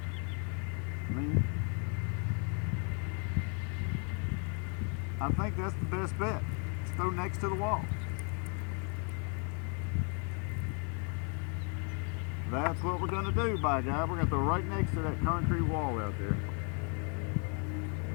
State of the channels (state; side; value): quieter; right; 38.1 dB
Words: I think that's the best bet. Let's throw next to the wall. That's what we're going to do, by God. We're going to throw right next to that concrete wall out there.